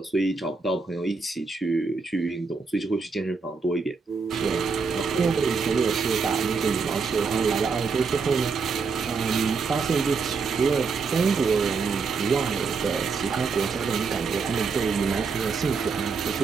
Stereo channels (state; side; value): quieter; left; 4.9 dB